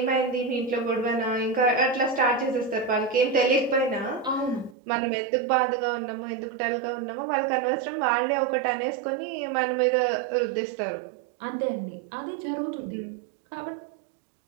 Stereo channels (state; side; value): drops out; left; at 4.8 s